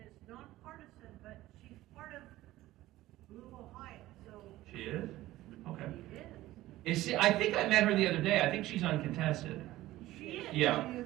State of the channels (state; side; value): quieter; left; 16.1 dB